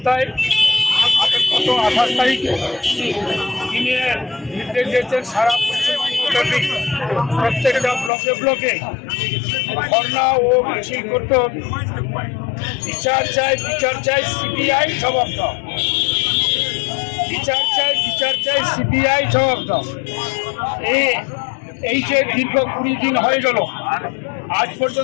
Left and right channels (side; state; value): right; drops out; at 8.1 s